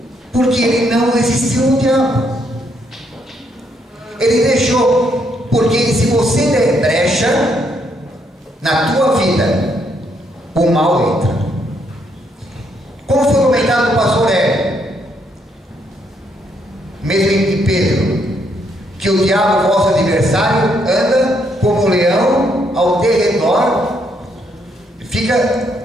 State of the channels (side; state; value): both; normal; correlation 0.74